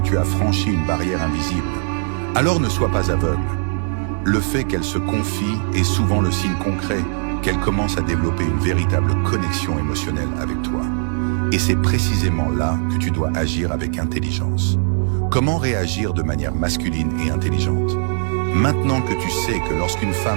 tu as franchi une barrière invisible. Alors ne sois pas aveugle. Le fait qu'elle se confie est souvent le signe concret qu'elle commence à développer une véritable connexion émotionnelle avec toi. Et c'est précisément là que tu dois agir avec intelligence. Comment réagir de manière masculine et intelligente? Maintenant que tu sais que lorsqu'une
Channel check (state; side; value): silent; left; digital silence